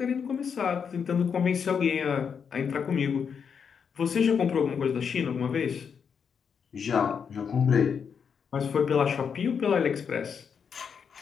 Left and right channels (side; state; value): right; quieter; 6.7 dB